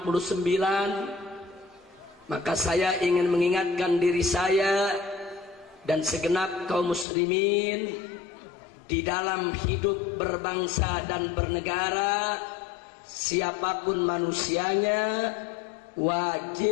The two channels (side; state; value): right; drops out; at 7.1 s